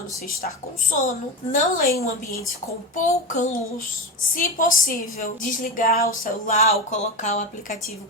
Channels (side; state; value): both; normal; correlation 0.20